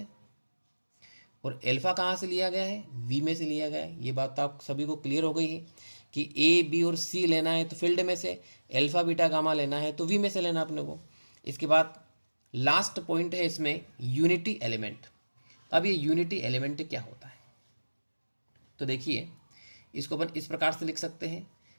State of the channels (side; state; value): both; inverted; correlation -1.00